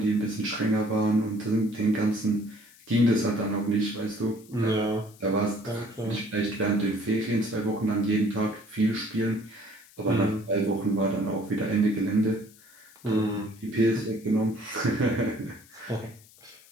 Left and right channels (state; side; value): noise; left; hiss, 25 dB below the sound